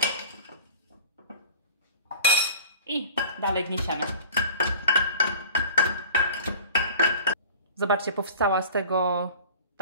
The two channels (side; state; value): both; inverted; correlation -0.43